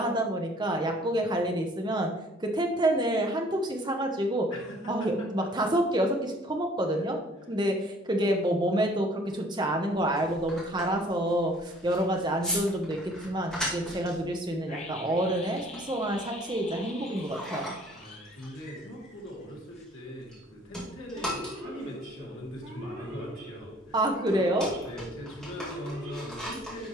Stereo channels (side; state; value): both; normal; correlation 0.55